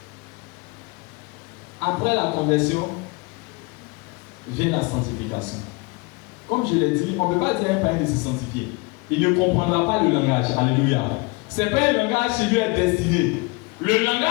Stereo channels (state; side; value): quieter; right; 27.3 dB